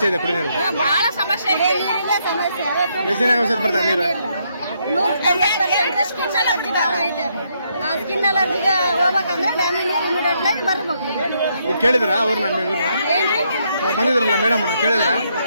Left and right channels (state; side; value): inverted; both; correlation -0.75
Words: ಇದೆ ಕುಡಿಯ ನೀರು, ಬಹಳ ಸಮಸ್ಯೆ ಇದೆ. ಎಷ್ಟು ಜನ ಔಷಧ ಬರ್ತಾರೆ ನೀರು? ಸ್ಕಿನ್ ಅಲರ್ಜಿ ಬಹಳ ಐತೆ. ಆ ಸ್ಕಿನ್ ಅಲರ್ಜಿಗೆ ಹೋಗ್ಬೇಕಂದ್ರೆ ಡ್ಯಾಮಿ ನೀರು ಇಮಿಡಿಯೇಟ್ ಬರ್ಬೇಕು. ಈಗ ಕೇಳಿದ್ರ ಅವ್ರನ್ನ ಇವ್ರನ್ನ ಬಂದಿದ್ರಲ್ಲ ಮೇಡಮ್ ಕೇಳಿದ್ರ?